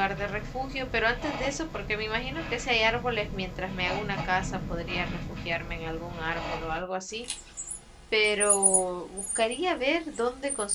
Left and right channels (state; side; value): identical; both; correlation 1.00